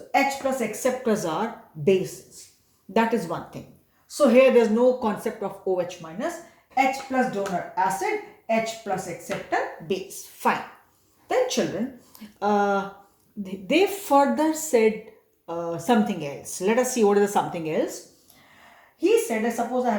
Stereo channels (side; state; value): both; identical; correlation 1.00